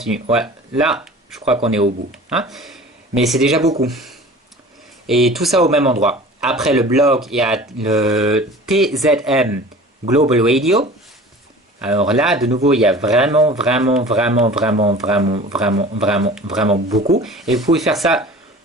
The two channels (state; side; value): normal; both; correlation 0.42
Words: Voilà. Là, je crois qu'on est au bout. Hein? Mais c'est déjà beaucoup. Et tout ça au même endroit. Après le blog, il y a le TZM Global Radio. Alors là, de nouveau, il y a vraiment beaucoup. Et vous pouvez faire ça